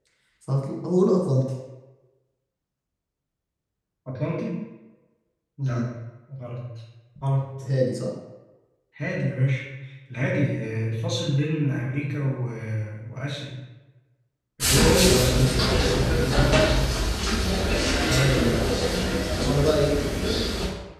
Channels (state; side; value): identical; both; correlation 1.00